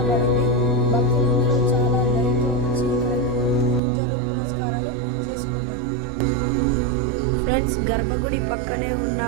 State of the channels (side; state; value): left; drops out; at 3.8 s